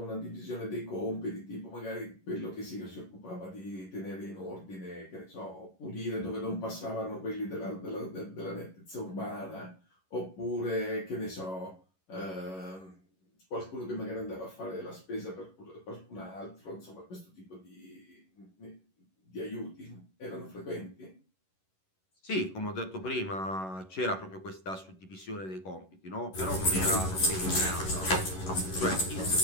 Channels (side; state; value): right; late; 11 ms